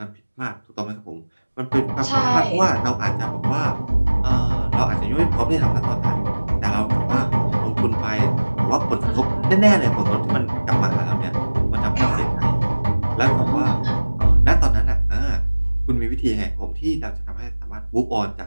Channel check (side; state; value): both; inverted; correlation -1.00